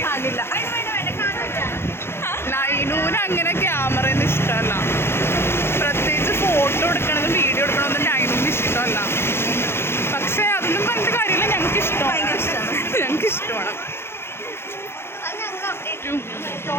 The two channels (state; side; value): late; right; 0.12 ms